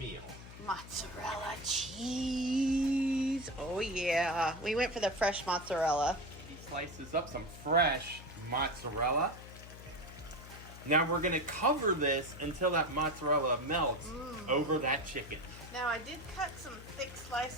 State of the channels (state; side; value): noise; left; hum, 15 dB below the sound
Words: Mozzarella cheese. Oh yeah. We went for the fresh mozzarella. He slices up some fresh mozzarella. Now we're going to cover this until that mozzarella melts over that chicken. Now I did cut some thick